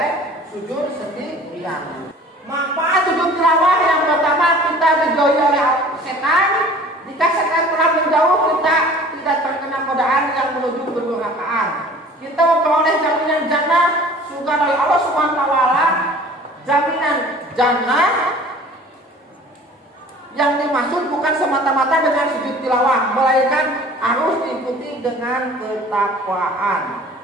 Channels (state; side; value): normal; both; correlation 0.47